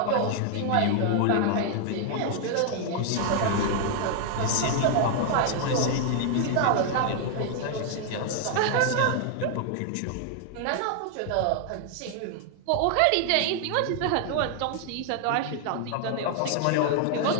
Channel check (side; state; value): both; different; correlation 0.00